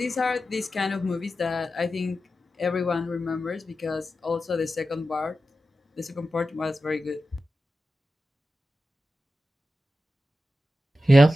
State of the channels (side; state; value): both; normal; correlation 0.92